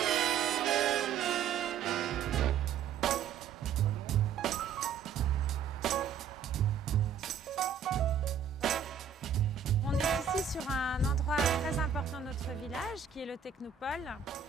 On est ici sur un endroit très important de notre village, qui est le Technopole,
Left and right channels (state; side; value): quieter; left; 7.3 dB